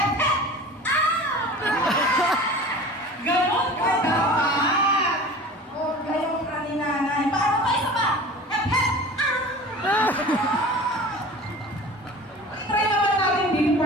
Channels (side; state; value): both; normal; correlation 0.39